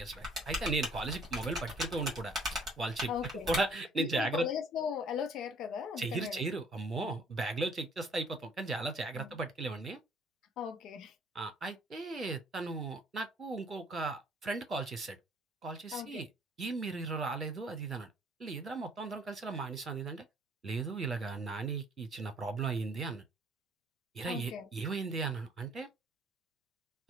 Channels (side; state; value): both; normal; correlation 0.59